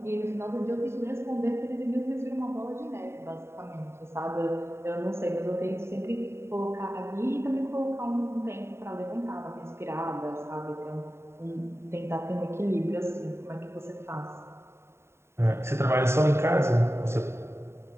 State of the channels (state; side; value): late; left; 0.12 ms